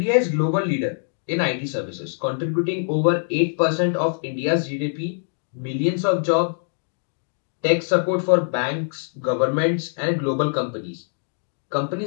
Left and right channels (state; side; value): silent; right; digital silence